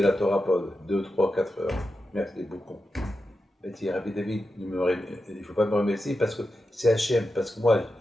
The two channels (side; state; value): both; normal; correlation 0.90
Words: la Torah pendant 2, 3, 4 heures. Merci beaucoup. Il dit, Rabbi David, il ne faut pas me remercier parce que c'est Hachem, parce que moi,